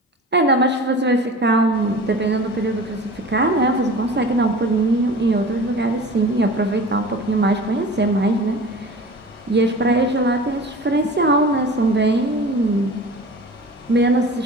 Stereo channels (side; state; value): both; normal; correlation 0.39